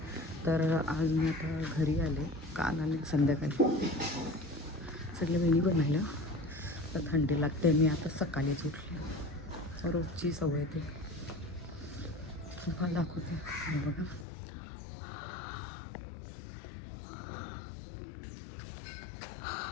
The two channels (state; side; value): drops out; right; at 14.2 s